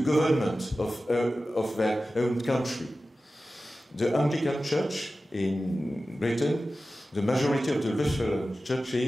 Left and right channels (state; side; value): normal; both; correlation 0.94